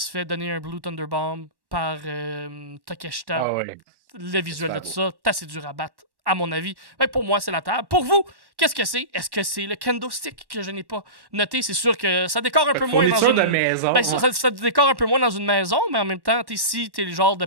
fait donner un Blue Thunder Bomb par Takeshita. Le visuel de tout ça, c'est assez dur à battre, à mon avis. Mais pour moi, c'est la table. Pour vous, qu'est-ce que c'est? Est-ce que c'est le kendo stick que je n'ai pas noté? C'est sûr que ça décore un peu moins dans une maison. Ça décore un peu moins dans une maison, mais en même temps, si t'es le genre de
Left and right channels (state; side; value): late; left; 1.1 ms